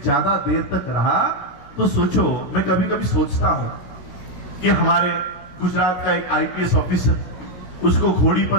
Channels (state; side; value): late; right; 16 ms